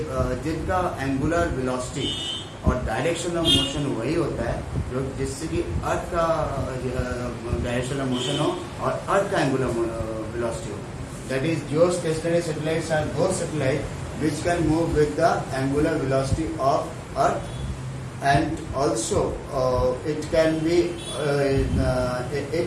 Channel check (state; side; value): identical; both; correlation 1.00